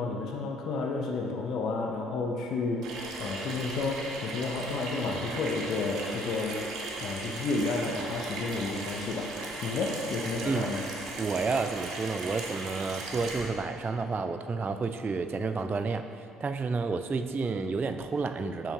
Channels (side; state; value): both; normal; correlation 0.67